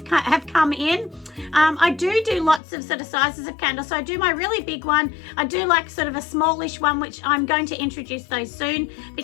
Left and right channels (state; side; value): drops out; right; at 2.6 s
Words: come in. I do lots of sort of sizes of candles. So I do my really big one. I do like sort of a smallish one, which I'm going to introduce those soon